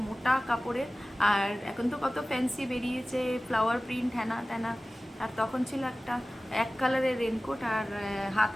মোটা কাপড়ের। আর এখন তো কত ফ্যান্সি বেরিয়েছে, ফ্লাওয়ার প্রিন্ট হ্যানা ত্যানা। আর তখন ছিল একটা এক কালারের রেনকোট, আর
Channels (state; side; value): normal; both; correlation 0.97